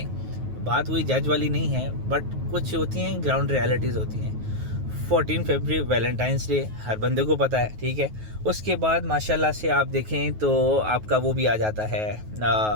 बात हुई जज वाली नहीं है, बट कुछ होती हैं ग्राउंड रियलिटीज़ होती हैं। 14 फरवरी वैलेंटाइंस डे हर बंदे को पता है, ठीक है। उसके बाद माशाल्लाह से आप देखें तो आपका वो भी आ जाता है,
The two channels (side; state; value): left; late; 9.3 ms